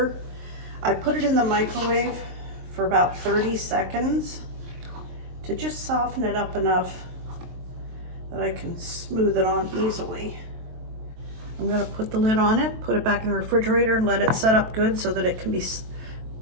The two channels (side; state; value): left; late; 23 ms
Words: I put it in the microwave for about 30 seconds to just soften it up enough that I can smooth it on easily. I'm going to put the lid on it, put it back in the refrigerator, and let it set up good so that it can be